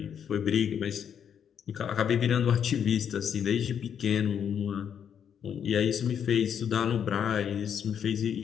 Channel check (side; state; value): right; quieter; 8.3 dB